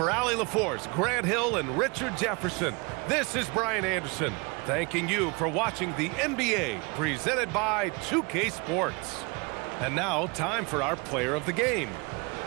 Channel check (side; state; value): left; quieter; 29.1 dB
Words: Allie LaForce, Grant Hill, and Richard Jefferson, this is Brian Anderson, thanking you for watching the NBA presented by 2K Sports. And now, time for our player of the game,